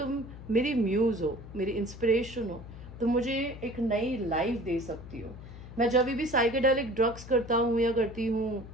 मेरी म्यूज हो, मेरी इंस्पिरेशन हो, तुम मुझे एक नई लाइफ दे सकती हो। मैं जब भी साइकेडेलिक ड्रग्स करता हूँ या करती हूँ,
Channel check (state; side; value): noise; left; hum, 14 dB below the sound